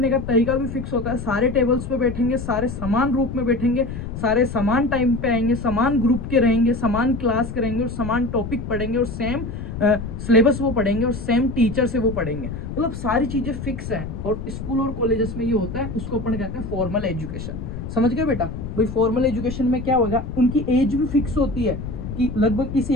का तरीका भी फिक्स होता है। सारे टेबल्स पे बैठेंगे, सारे समान रूप में बैठेंगे, सारे समान टाइम पे आएंगे, समान ग्रुप के रहेंगे, समान क्लास करेंगे और समान टॉपिक पढ़ेंगे और सेम सिलेबस वो पढ़ेंगे और सेम टीचर से वो पढ़ेंगे। मतलब सारी चीजें फिक्स हैं। और स्कूल और कॉलेजेस में ये होता है, उसको अपन कहते हैं फॉर्मल एजुकेशन। समझ गए बेटा। भाई फॉर्मल एजुकेशन में क्या होगा, उनकी एज भी फिक्स होती है कि लगभग इस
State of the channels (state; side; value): noise; left; rumble, 7 dB below the sound